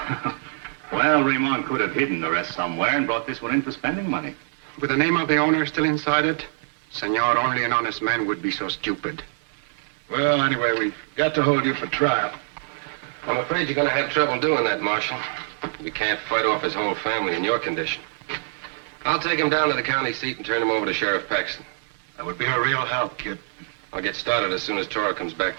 Well, Ramon could have hidden the rest somewhere and brought this one in for spending money. With the name of the owner still inside it, senor, only an honest man would be so stupid. Well, anyway, we've got to hold you for trial. I'm afraid you're going to have trouble doing that, Marshal. We can't fight off his whole family in your condition. I'll take him down to the county seat and turn him over to Sheriff Paxton. That would be a real help, Kid. I'll get started as soon as Toro comes back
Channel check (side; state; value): left; silent; digital silence